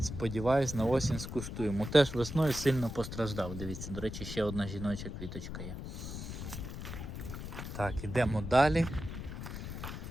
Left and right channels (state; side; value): noise; left; rumble, 7 dB below the sound